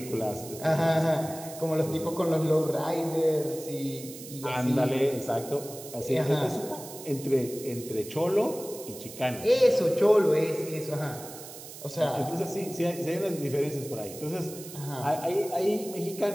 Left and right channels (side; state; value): right; noise; hiss, 14 dB below the sound